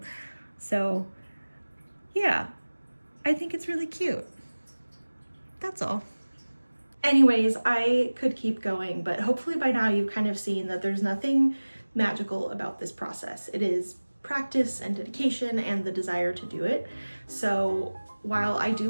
So yeah, I think it's really cute. That's all. Anyways, I could keep going, but hopefully by now you've kind of seen that there's nothing magical about this process. It is practice and dedication and the desire to do it. So while I do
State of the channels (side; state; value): both; inverted; correlation -1.00